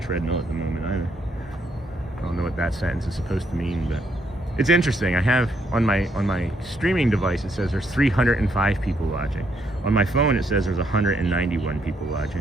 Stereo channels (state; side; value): normal; both; correlation 0.74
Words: at the moment either. I don't know what that sentence is supposed to mean, but it's interesting. I have on my streaming device, it says there's 305 people watching. On my phone, it says there's 191 people